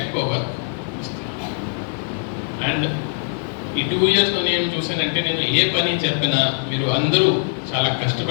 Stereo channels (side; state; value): right; silent; 65 dB below the other